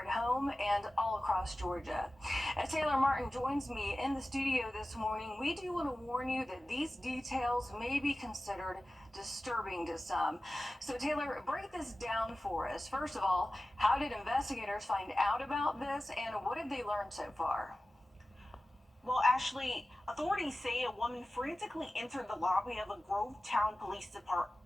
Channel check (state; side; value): normal; both; correlation 0.96